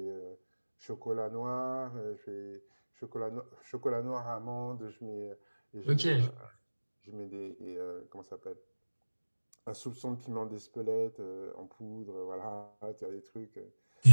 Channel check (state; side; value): inverted; both; correlation -1.00